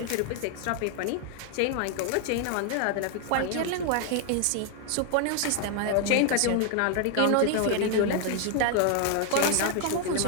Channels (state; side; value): different; both; correlation 0.00